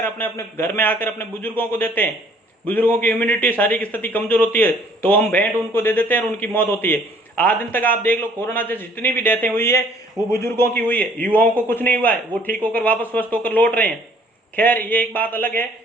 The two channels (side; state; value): both; normal; correlation 0.58